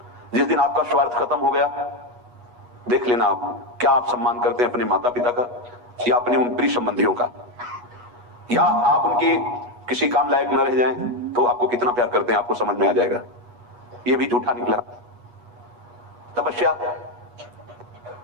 जिस दिन आपका स्वार्थ खत्म हो गया, देख लेना आप क्या आप सम्मान करते हैं अपने माता पिता का या अपने उन प्रिय संबंधियों का, या आप उनके किसी काम लायक न रह जाएं तो आपको कितना प्यार करते हैं आपको समझ में आ जाएगा। ये भी झूठा निकला। तपस्या,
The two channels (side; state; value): left; late; 8.3 ms